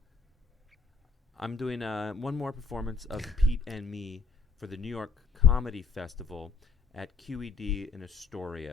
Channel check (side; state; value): right; quieter; 4.8 dB